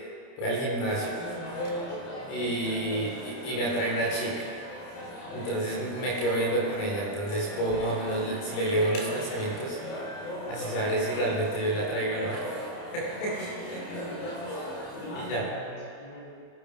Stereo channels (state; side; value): late; right; 29 ms